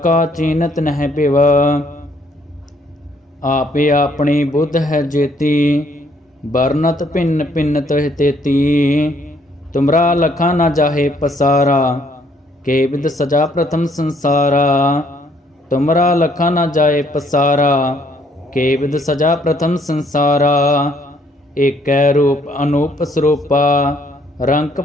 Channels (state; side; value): normal; both; correlation 0.66